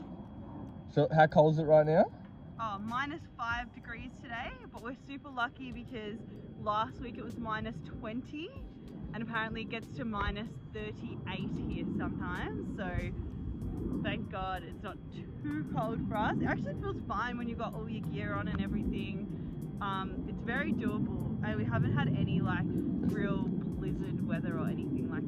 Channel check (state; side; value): identical; both; correlation 1.00